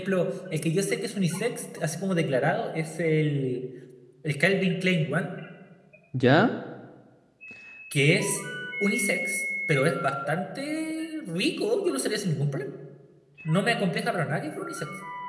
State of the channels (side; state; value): both; identical; correlation 1.00